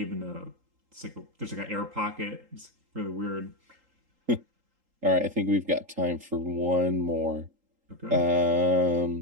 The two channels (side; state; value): left; late; 3.8 ms